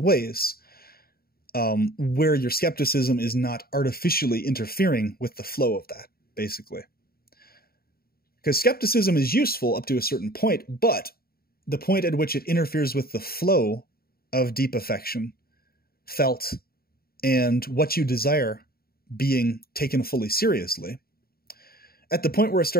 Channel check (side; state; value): right; late; 0.44 ms